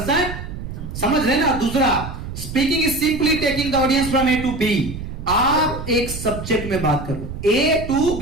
समझ रहे ना। दूसरा, speaking is simply taking the audience from A to B. आप एक सब्जेक्ट में बात करो, ए टू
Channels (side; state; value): right; noise; rumble, 9 dB below the sound